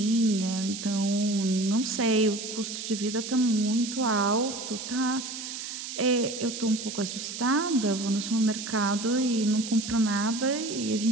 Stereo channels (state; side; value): noise; right; hiss, 8 dB below the sound